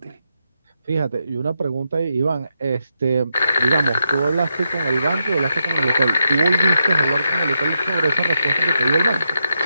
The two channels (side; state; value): both; inverted; correlation -0.84